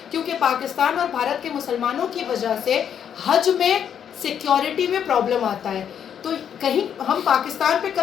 क्योंकि पाकिस्तान और भारत के मुसलमानों की वजह से हज में सिक्योरिटी में प्रॉब्लम आता है। तो कहीं हम पाकिस्तान पे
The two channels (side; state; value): right; quieter; 8.6 dB